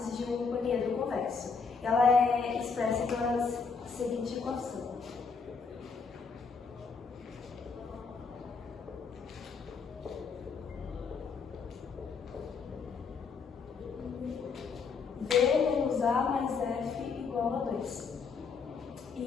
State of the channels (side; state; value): right; quieter; 5.2 dB